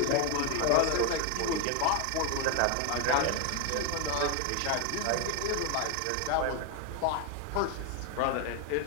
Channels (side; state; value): both; different; correlation 0.01